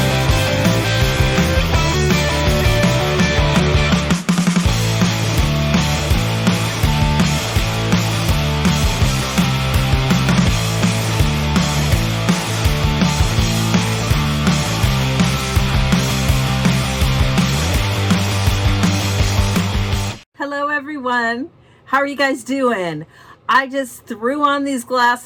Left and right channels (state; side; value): identical; both; correlation 1.00